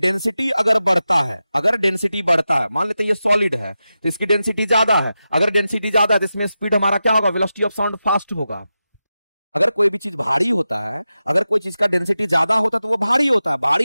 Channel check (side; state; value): both; inverted; correlation -0.92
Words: अगर बढ़ता है, अगर डेंसिटी बढ़ता है, मान लेते हैं ये सॉलिड है तो इसकी डेंसिटी ज्यादा है। अगर डेंसिटी ज्यादा है तो इसमें स्पीड हमारा क्या होगा, वेलोसिटी ऑफ साउंड फास्ट होगा। अगर कोई भी चीज भारी होता है, अगर कोई चीज का डेंसिटी ज्यादा होता है तो वो भारी होता है, भारी